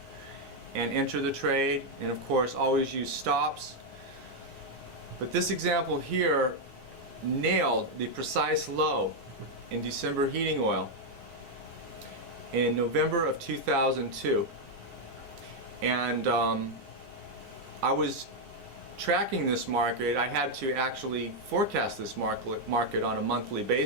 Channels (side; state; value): left; late; 9.8 ms